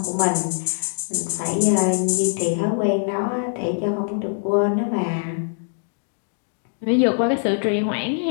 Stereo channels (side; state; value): right; silent; digital silence